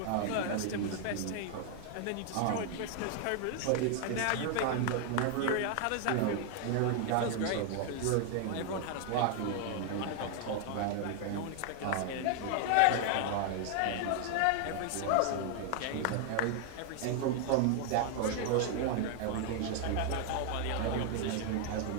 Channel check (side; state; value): both; different; correlation 0.00